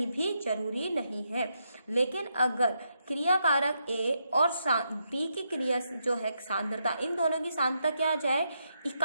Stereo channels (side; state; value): both; inverted; correlation -0.81